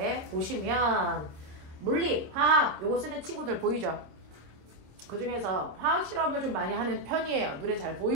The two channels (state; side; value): late; left; 26 ms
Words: 보시면 물리, 화학 요거 쓰는 친구들 보이죠? 그 중에서 화학 실험을 좀 많이 하는 편이에요. 눈에 잘